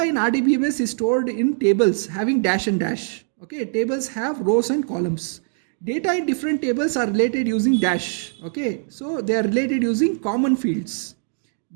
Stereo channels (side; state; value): left; silent; digital silence